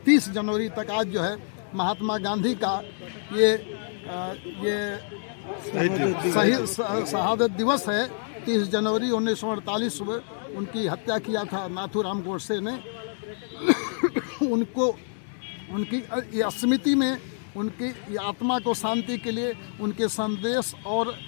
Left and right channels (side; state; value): right; silent; digital silence